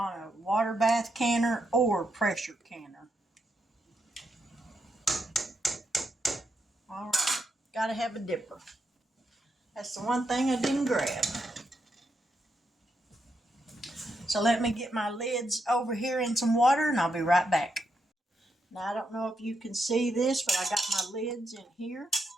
a water bath canner or pressure canner. All right, gotta have a dipper. That's the one thing I didn't grab. So let me get my lids over here in some water and I'll be right back. Now I don't know if you can see this, but I got my lids in here.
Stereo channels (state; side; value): normal; both; correlation 0.82